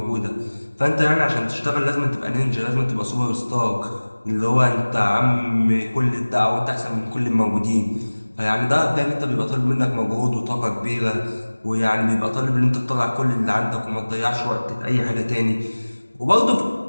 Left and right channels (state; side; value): inverted; both; correlation -1.00